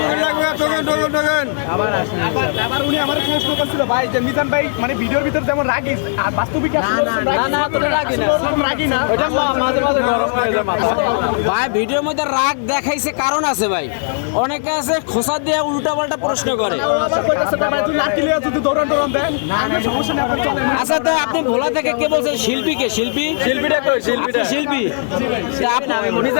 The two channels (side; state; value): right; silent; digital silence